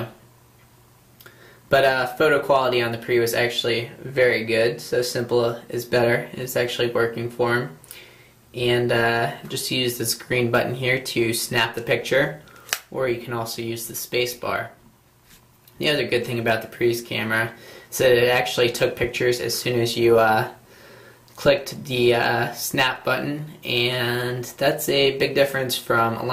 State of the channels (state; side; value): identical; both; correlation 1.00